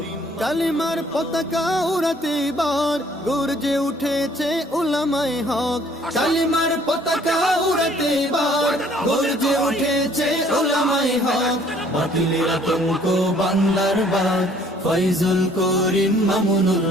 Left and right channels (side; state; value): both; normal; correlation 0.59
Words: কালিমার পতাকা উড়াতে এবার গর্জে উঠেছে উলামায়ে হক। কালিমার পতাকা উড়াতে এবার গর্জে উঠেছে উলামায়ে হক। বাতিলের আতঙ্ক বাংলার বাগ ফয়জুল করিম মামুনুল